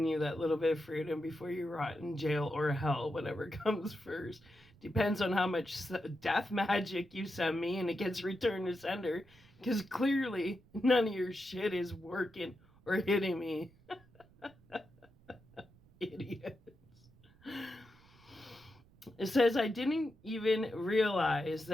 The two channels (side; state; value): right; noise; rumble, 27 dB below the sound